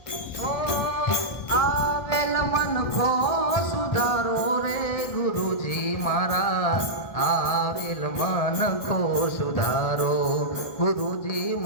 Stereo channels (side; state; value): right; late; 1.6 ms